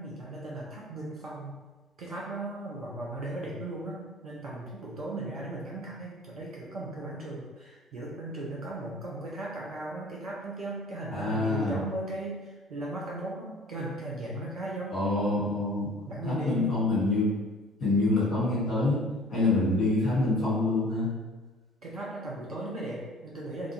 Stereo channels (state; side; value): normal; both; correlation 0.47